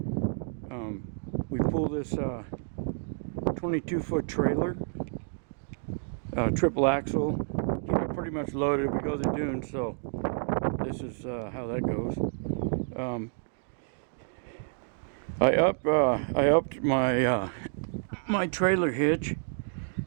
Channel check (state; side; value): silent; left; digital silence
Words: We pull this 22-foot trailer, triple axle, keep it pretty much loaded. We go to the dunes, so this is how that goes. I upped my trailer hitch